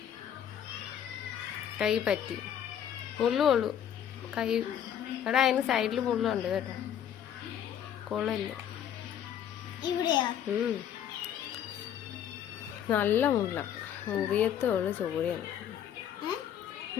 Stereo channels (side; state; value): right; quieter; 9.6 dB